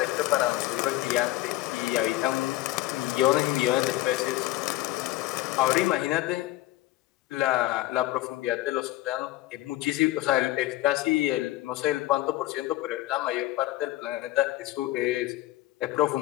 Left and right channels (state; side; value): quieter; right; 16.4 dB